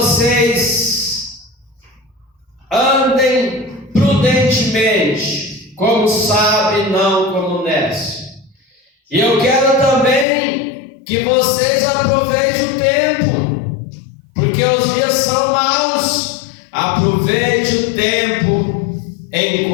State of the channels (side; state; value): right; drops out; at 10.2 s